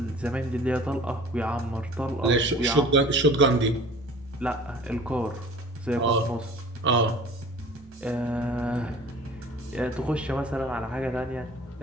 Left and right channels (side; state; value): both; normal; correlation 0.44